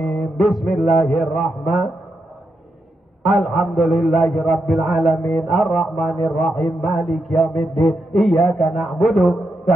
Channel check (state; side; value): normal; both; correlation 0.84